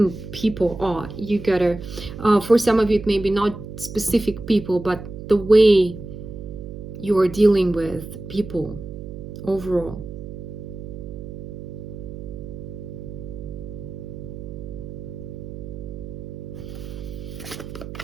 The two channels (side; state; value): right; noise; hum, 10 dB below the sound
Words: people are. You gotta, for some of you, it may be not specific people, but the way you are dealing with people overall.